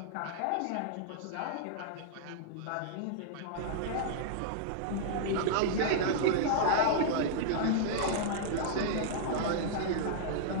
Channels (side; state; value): both; different; correlation -0.02